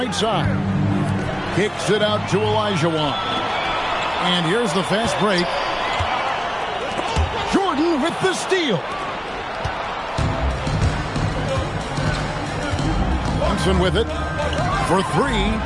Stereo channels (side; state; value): both; identical; correlation 1.00